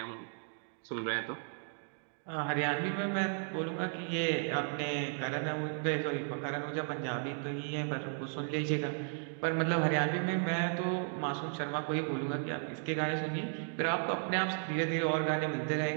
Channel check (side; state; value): left; silent; 55 dB below the other